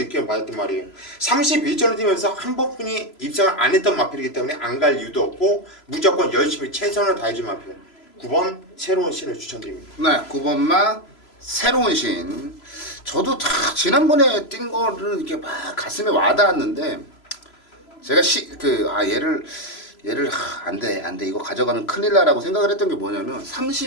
받았단 말이에요. 31전을 뛰면서 한 번뿐이 입상을 안 했던 마필이기 때문에 안 갈 이유도 없고 무조건 열심히 최선을 다해준 마필 9번 새로운 신을 추천드립니다. 네, 9번마 새로운 신. 저도 다 지난번에 뛴 거를 이렇게 막 가슴에 와닿았는데 제가 얘를 안돼 이거 가져가면 큰일 나라고 생각을 했던 게 뭐냐면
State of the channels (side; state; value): right; late; 3.0 ms